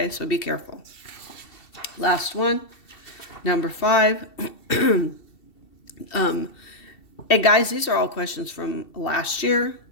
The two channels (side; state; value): right; late; 2.7 ms